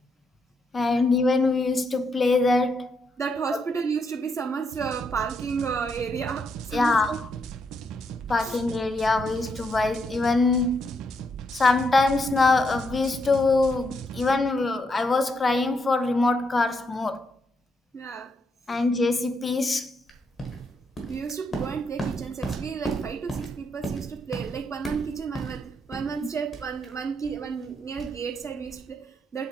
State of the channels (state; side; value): normal; both; correlation 0.78